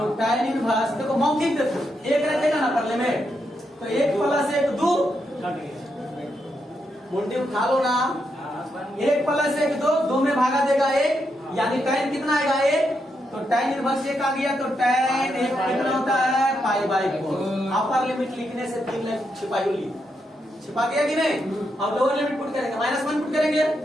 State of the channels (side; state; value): both; normal; correlation 0.82